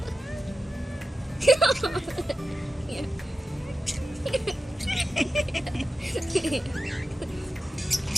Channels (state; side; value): normal; both; correlation 0.92